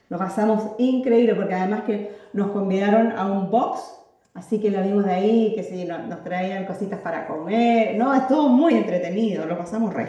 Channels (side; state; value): both; identical; correlation 1.00